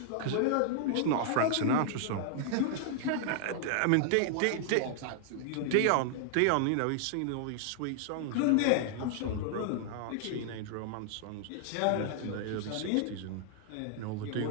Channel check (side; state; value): both; different; correlation -0.01